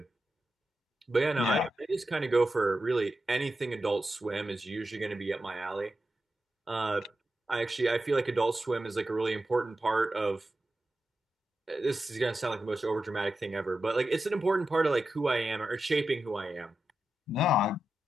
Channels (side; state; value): both; normal; correlation 0.90